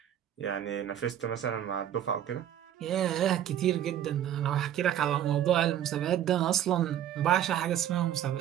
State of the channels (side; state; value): left; quieter; 10.8 dB